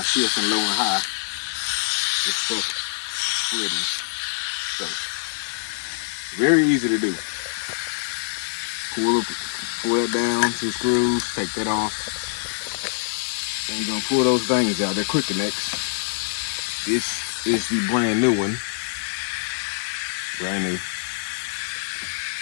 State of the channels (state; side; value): silent; right; digital silence